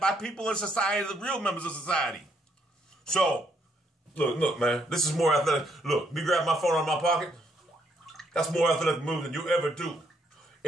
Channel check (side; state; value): both; normal; correlation 0.72